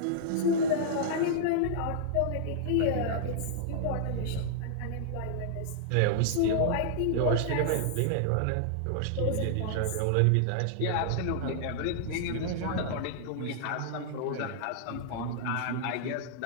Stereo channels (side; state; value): both; different; correlation -0.01